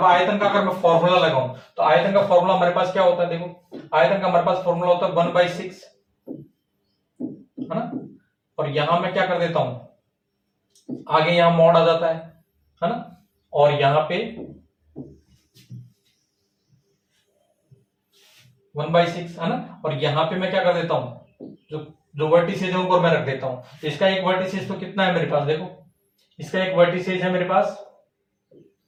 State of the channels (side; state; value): both; identical; correlation 1.00